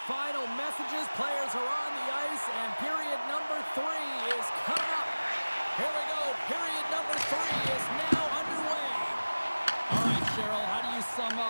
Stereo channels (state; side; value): inverted; both; correlation -1.00